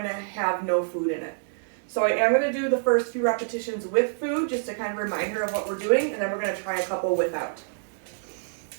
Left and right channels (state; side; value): silent; left; digital silence